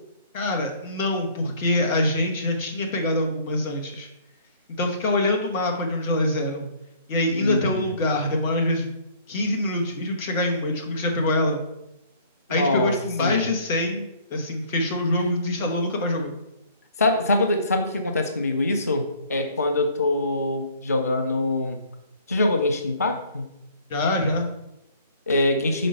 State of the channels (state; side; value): inverted; both; correlation -0.56